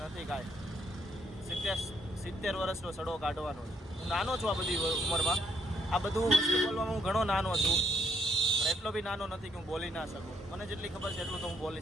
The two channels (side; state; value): both; normal; correlation 0.72